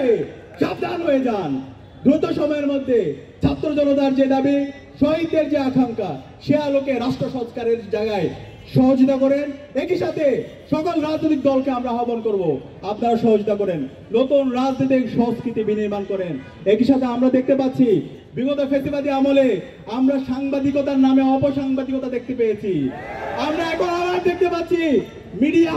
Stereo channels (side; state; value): both; identical; correlation 1.00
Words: সাবধান হয়ে যান। দ্রুত সময়ের মধ্যে ছাত্র জনতার যে দাবি, শহীদদের যে আকাঙ্ক্ষা, সে আলোকে রাষ্ট্র সংস্কারের জায়গায় সহযোগিতা করেন। একই সাথে সকল রাজনৈতিক দলকে আমরা আহ্বান করব, আপনারা সহযোগিতা করেন, নতুন রাজনৈতিক সংস্কৃতি বিনির্মাণ করেন। একই সাথে আমরা দেখতে পাচ্ছি বিগত ফ্যাসিবাদী আমলে আমরা সাংবাদিকতার নামে অপসাংবাদিকতা দেখতে পেয়েছি। আমরা এখন আবার দেখতে পাচ্ছি মিডিয়া